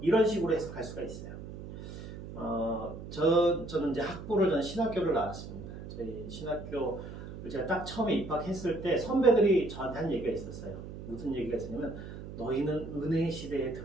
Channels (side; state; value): right; noise; hum, 11 dB below the sound